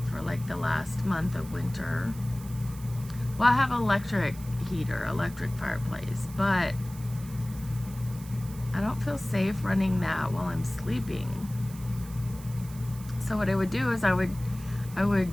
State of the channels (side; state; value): right; noise; hiss, 18 dB below the sound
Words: for like the last month of winter. Well, I have electric heater, electric fireplace, but I don't feel safe running that while I'm sleeping. So what I would do is I would